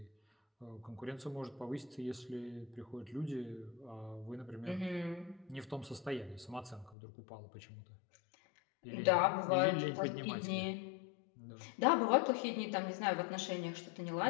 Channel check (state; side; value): drops out; right; at 7.0 s